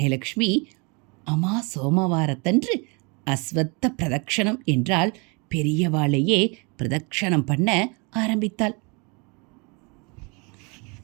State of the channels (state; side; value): quieter; left; 30.8 dB